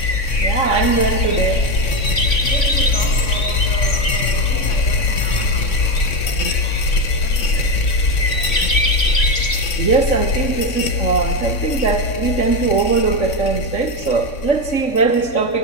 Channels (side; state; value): right; late; 3.6 ms